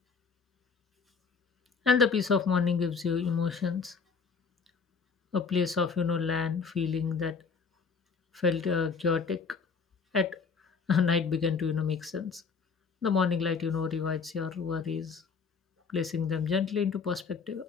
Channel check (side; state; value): right; quieter; 5.3 dB